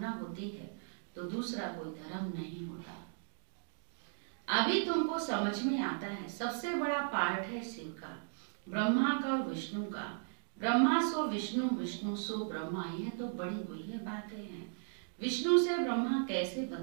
होती है तो दूसरा कोई धर्म नहीं होता। अभी तुमको समझ में आता है सबसे बड़ा पार्ट है शिव का, ब्रह्मा का और विष्णु का। ब्रह्मा सो विष्णु, विष्णु सो ब्रह्मा, यह तो बड़ी गुह्य बातें हैं। विष्णु से ब्रह्मा कैसे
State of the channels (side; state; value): left; silent; digital silence